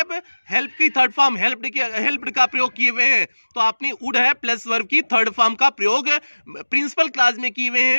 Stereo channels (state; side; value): inverted; both; correlation -1.00